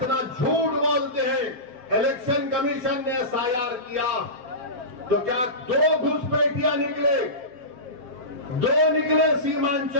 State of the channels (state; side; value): late; left; 7.4 ms